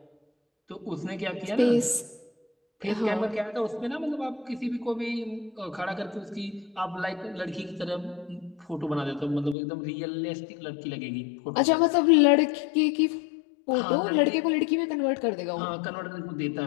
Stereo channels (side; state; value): right; drops out; at 9.6 s